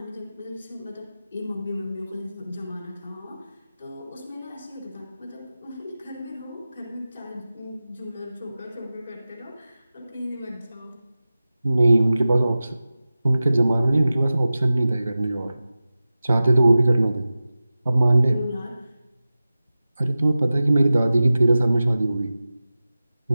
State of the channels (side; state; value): both; inverted; correlation -0.96